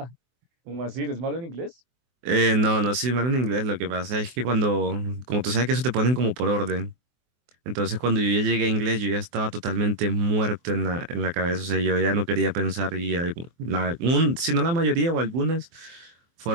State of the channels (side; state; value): left; late; 24 ms